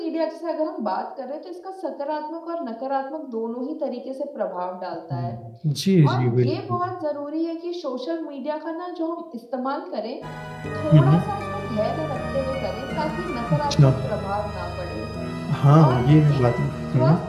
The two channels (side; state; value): both; identical; correlation 1.00